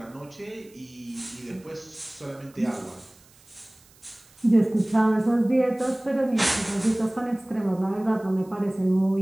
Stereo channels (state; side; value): noise; right; hiss, 28 dB below the sound